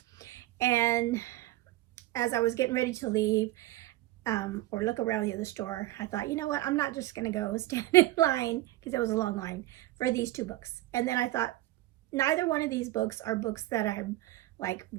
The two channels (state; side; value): quieter; left; 16.7 dB